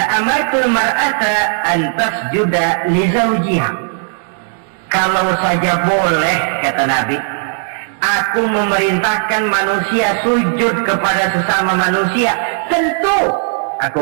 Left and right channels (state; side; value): silent; left; 64 dB below the other